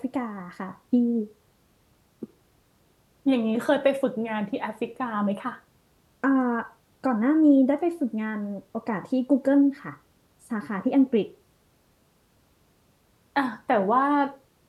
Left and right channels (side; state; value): both; identical; correlation 1.00